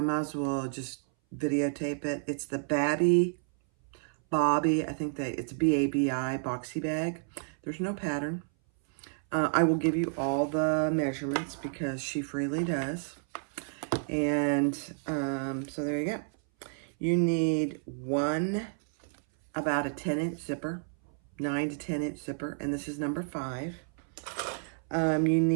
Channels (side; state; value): left; silent; 57 dB below the other